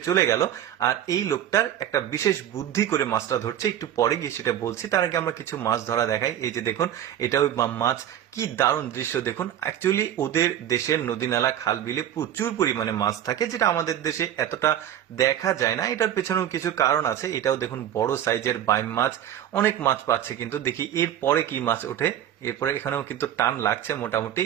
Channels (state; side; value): quieter; left; 10.8 dB